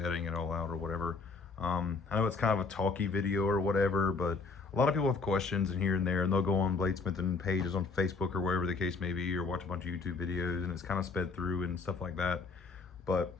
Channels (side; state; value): right; quieter; 4.4 dB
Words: it all out or whatever. I know it's kind of a talky video or whatever, but a lot of people have questions and here and there, and they'll go on bladesmithing pages on Facebook or wherever the case may be, or watch a bunch of YouTube videos, and it's kind of sped through and stuff like that. But